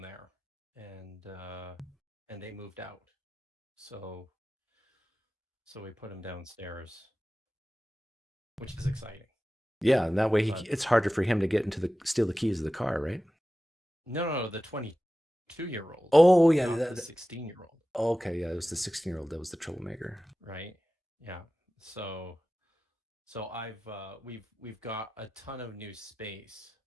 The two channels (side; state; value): both; normal; correlation 0.95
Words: there, and they moved out. So we put him downstairs, which is exciting. Yeah, and that way it's harder for him to steal the keys of the car, right? No, the 22-year-old. Oh, yeah, not the 16-year-old. Okay, yeah, it was the 16-year-old that was the troublemaker. Right. Yeah. So we've got a ton of new space,